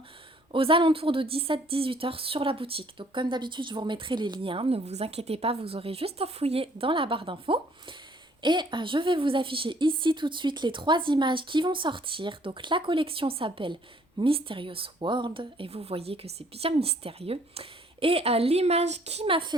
aux alentours de 17-18 heures sur la boutique. Donc comme d'habitude je vous remettrai les liens, ne vous inquiétez pas, vous aurez juste à fouiller dans la barre d'infos. Et je vais vous afficher ici tout de suite les 3 images qui vont sortir. Donc la collection s'appelle Mysterious World et vous voyez que c'est bien mystérieux. Et l'image qui m'a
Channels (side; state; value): both; normal; correlation 0.61